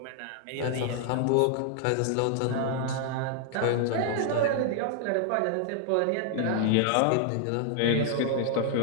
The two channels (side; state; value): both; different; correlation -0.01